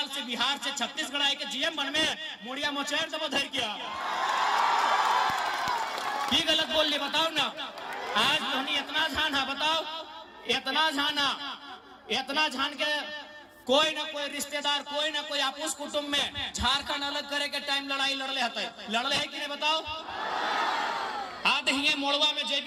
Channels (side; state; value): both; identical; correlation 1.00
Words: से, बिहार से, छत्तीसगढ़ आए के जीएम बन में मुड़िया मोचेर से धर किया। की गलत बोल लिए बताओ ना। आज तो इतना झान है, बताओ इतना झान के कोई ना कोई रिश्तेदार, कोई ना कोई आपस कुटुंब में झारखंड अलग करे के टाइम लड़ाई लड़ले है कि नहीं बताओ। आज हिये मोड़वा में